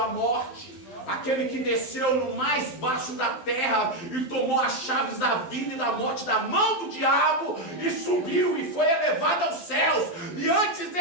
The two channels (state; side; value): late; right; 12 ms